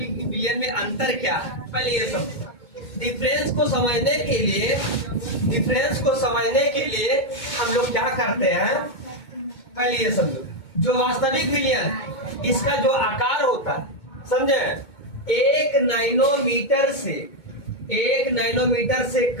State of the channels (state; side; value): late; right; 2.2 ms